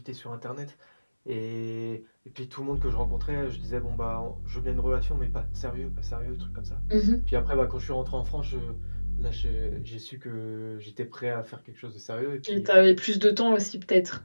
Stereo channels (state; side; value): inverted; both; correlation -1.00